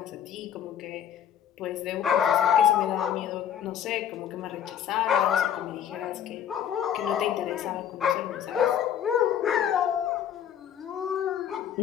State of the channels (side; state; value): right; quieter; 9.4 dB